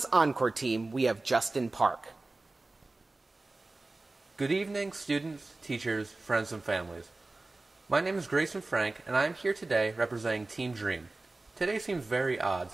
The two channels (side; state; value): left; quieter; 3.2 dB